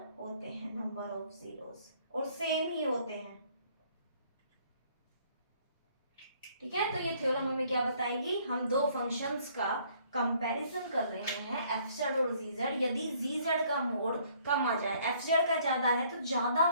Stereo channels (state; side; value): inverted; both; correlation -0.62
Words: होते हैं, नंबर ऑफ जीरोज, और सेम ही होते हैं। ठीक है, तो ये थ्योरम हमें क्या बताएगी, हम दो फंक्शंस का कंपैरिजन कर रहे हैं एफ जेड और जी जेड। यदि जी जेड का मोड कम आ जाए, एफ जेड का ज्यादा है, तो ज्यादा